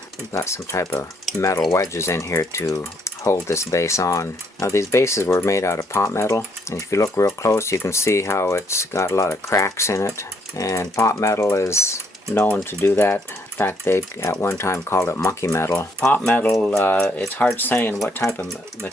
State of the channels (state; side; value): normal; both; correlation 0.70